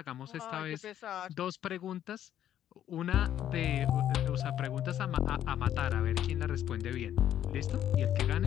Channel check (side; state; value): right; quieter; 10.9 dB